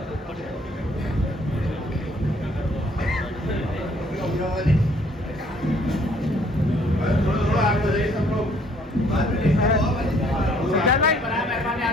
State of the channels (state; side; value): normal; both; correlation 0.62